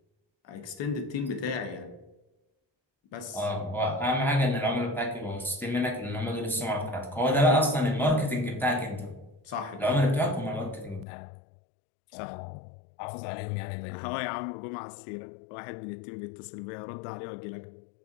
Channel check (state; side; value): drops out; right; at 11.1 s